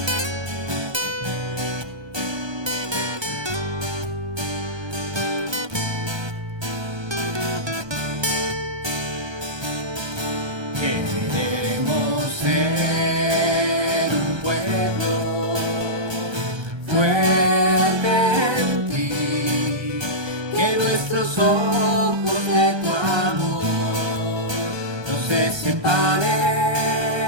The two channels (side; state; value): left; late; 1.2 ms